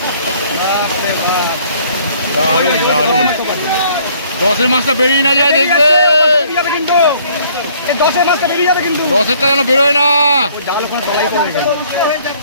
দারুণ দারুণ। 10-এর মাছটা বেরিয়ে না যায়, দেখবে কিন্তু 10-এর মাছটা বেরিয়ে যাবে, কিন্তু 10-এরটা যেন বেরোয় না। জাল ওখানে তলাই করে রেখে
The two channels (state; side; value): inverted; both; correlation -0.60